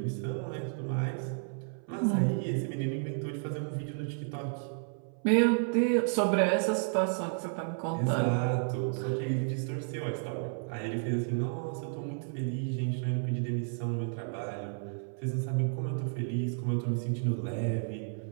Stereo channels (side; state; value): left; silent; 56 dB below the other